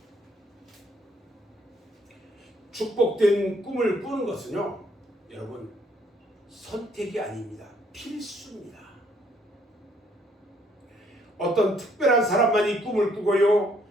축복된 꿈을 꾸는 것은요, 여러분, 선택이 아닙니다. 필수입니다. 어떤 특별한 사람만이 꿈을 꾸고요,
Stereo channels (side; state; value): both; normal; correlation 0.67